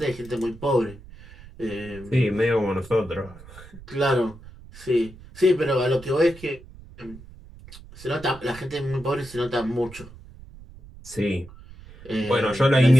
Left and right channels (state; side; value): noise; right; rumble, 19 dB below the sound